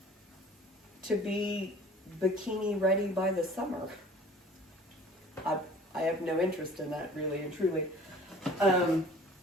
to be bikini ready by the summer. I have no interest in that, really and truly.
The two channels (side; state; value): both; normal; correlation 0.48